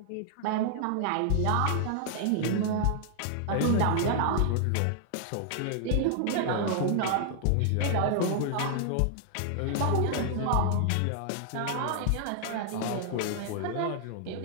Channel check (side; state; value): both; different; correlation -0.01